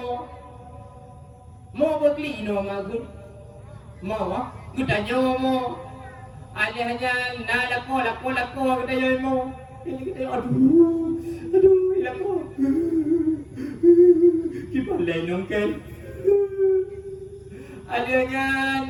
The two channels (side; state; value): both; identical; correlation 1.00